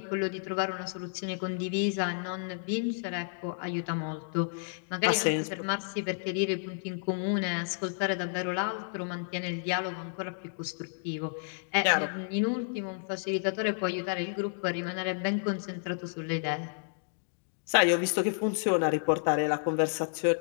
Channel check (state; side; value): silent; right; digital silence